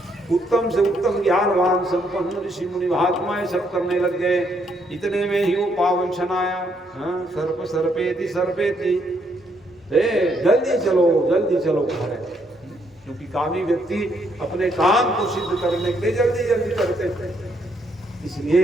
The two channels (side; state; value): both; normal; correlation 0.73